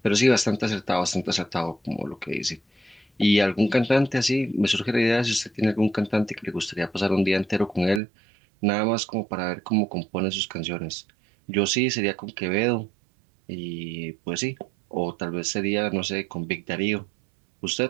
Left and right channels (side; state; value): left; drops out; at 8.0 s